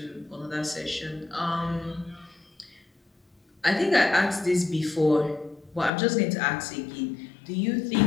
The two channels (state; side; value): drops out; right; at 5.9 s